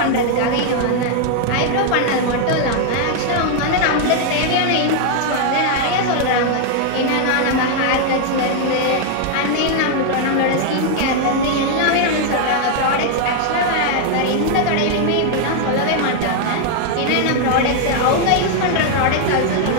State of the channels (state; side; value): different; both; correlation 0.00